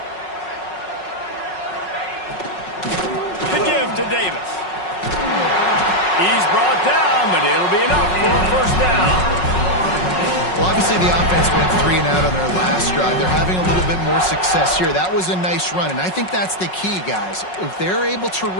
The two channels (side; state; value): right; late; 5.4 ms